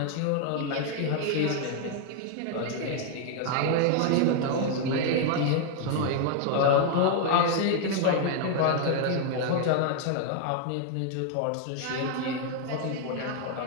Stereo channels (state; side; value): different; both; correlation 0.00